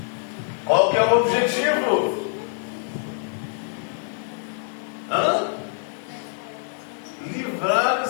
Qual que é o objetivo? Livrar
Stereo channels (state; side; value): silent; right; digital silence